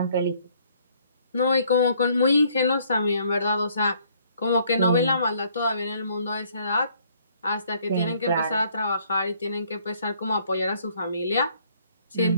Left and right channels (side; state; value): both; inverted; correlation -0.64